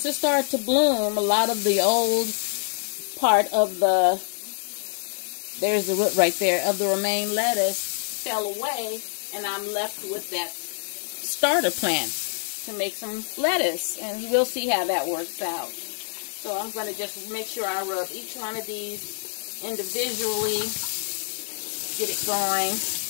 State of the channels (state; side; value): silent; right; digital silence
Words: it started to bloom, a lot of the old part of the, there's the root right there, of the romaine lettuce fell away, and I'm left with that starter plant to make some lettuce, and we'll see how that works out. So I'm going to just make sure I rub each one of these individually, get it going,